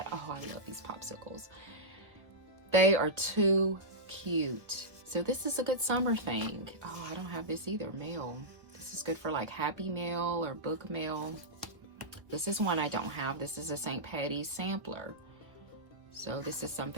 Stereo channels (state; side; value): late; left; 1.3 ms